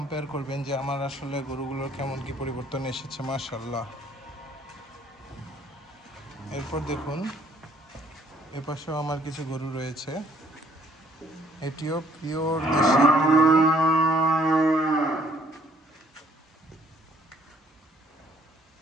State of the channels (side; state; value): both; normal; correlation 0.62